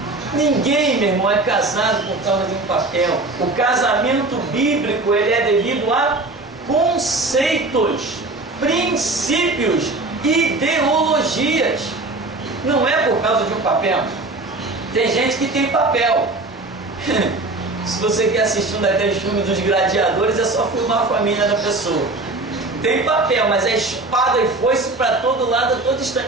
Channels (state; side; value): quieter; left; 3.1 dB